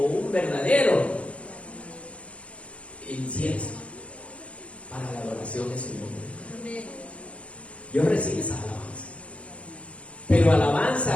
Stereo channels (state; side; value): late; right; 0.062 ms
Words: un verdadero incienso para la adoración de su nombre. Dios recibe esas alabanzas. Pero